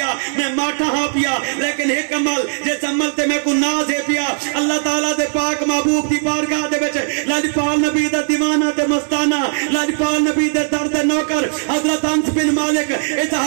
میں ماٹھا ہاں پیا لیکن ایک عمل جس عمل تے میں کو ناز ہے پیا اللہ تعالیٰ دے پاک محبوب دی بارگاہ دے وچ لاجپال نبی دا دیوانہ تے مستانہ لاجپال نبی دے درد نوکر حضرت انس بن مالک اس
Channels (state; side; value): silent; left; digital silence